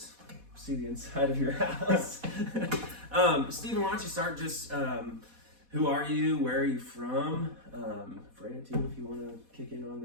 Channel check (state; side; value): late; left; 4.1 ms